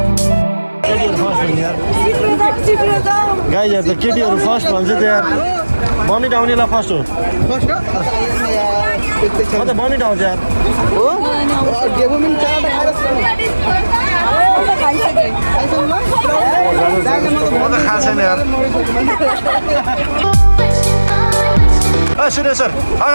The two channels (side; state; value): both; inverted; correlation -1.00